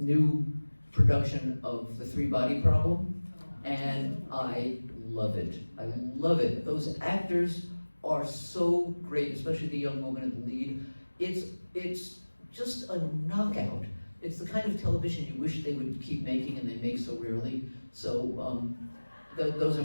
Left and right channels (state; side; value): inverted; both; correlation -1.00